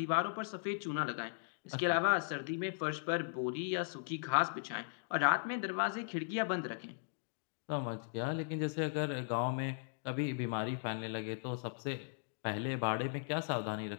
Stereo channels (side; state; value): right; silent; digital silence